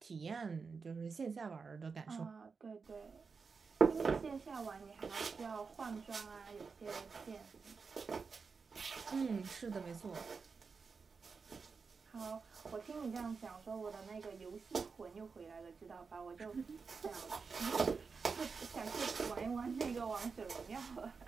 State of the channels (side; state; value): left; quieter; 5.0 dB